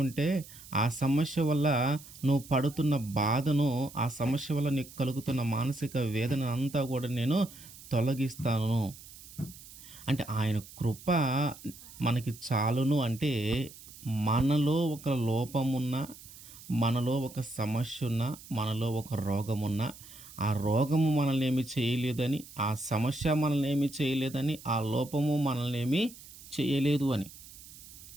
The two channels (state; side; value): noise; right; hiss, 18 dB below the sound